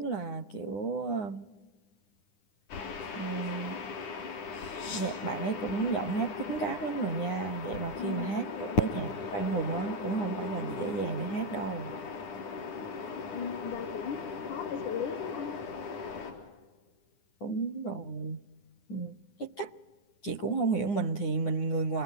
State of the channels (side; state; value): right; late; 9.9 ms